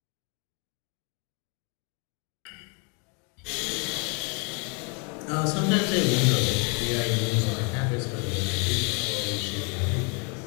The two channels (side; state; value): right; quieter; 33.0 dB